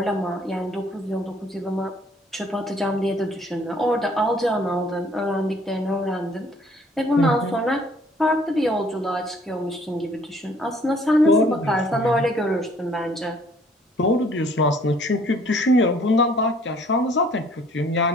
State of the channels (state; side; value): normal; both; correlation 0.59